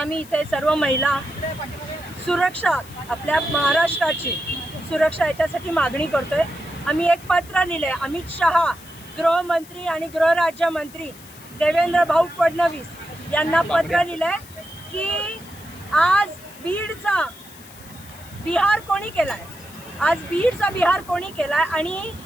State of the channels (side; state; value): left; noise; hiss, 20 dB below the sound